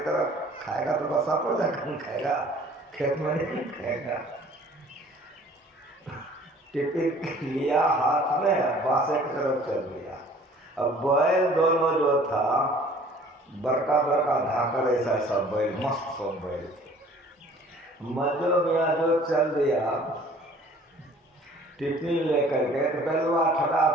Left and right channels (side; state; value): both; normal; correlation 0.52